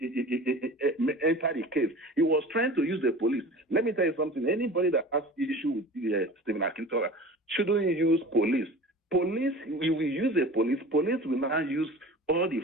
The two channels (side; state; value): both; normal; correlation 0.38